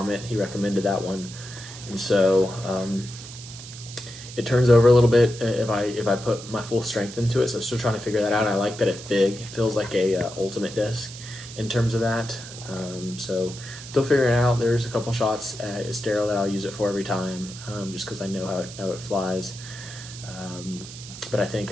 he recommended that one, and so it turns over a little bit if I put my full strength into it, so I'm still trying to figure that out. I like that it's big. It feels like a ultimate disc in terms of that. So still figuring it out. There's a couple shots at Estero that I'll use it for every time, just because I know how it flies. But I think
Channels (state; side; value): noise; right; hiss, 14 dB below the sound